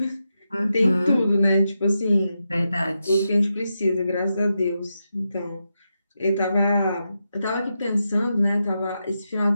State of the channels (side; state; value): both; inverted; correlation -0.87